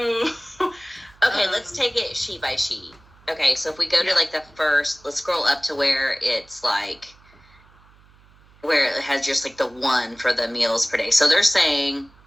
Okay, let's take it sheet by sheet. Okay, so if we go to like the first, let's scroll up to where it's like, where it has just like the one for the meals per day. So they're saying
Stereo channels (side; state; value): right; noise; hum, 28 dB below the sound